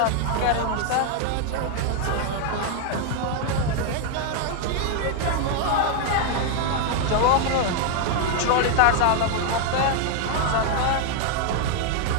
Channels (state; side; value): different; both; correlation 0.00